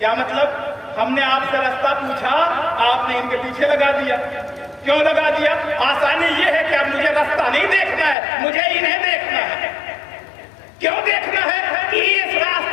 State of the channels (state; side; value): drops out; right; at 8.2 s